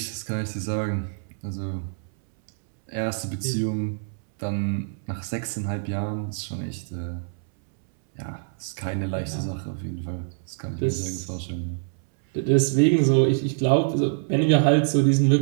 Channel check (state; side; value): silent; left; 62 dB below the other